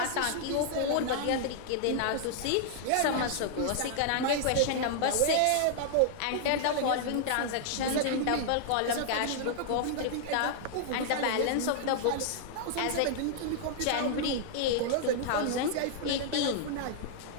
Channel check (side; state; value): both; different; correlation -0.01